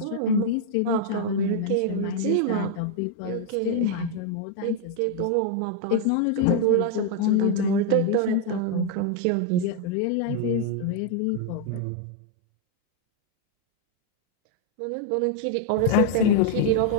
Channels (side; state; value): both; different; correlation 0.00